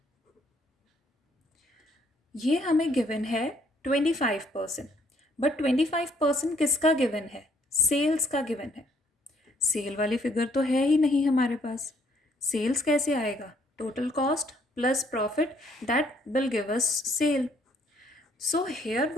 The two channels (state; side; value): normal; both; correlation 0.67